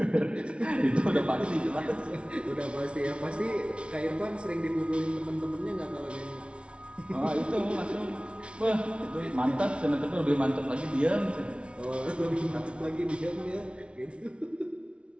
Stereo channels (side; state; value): left; late; 0.059 ms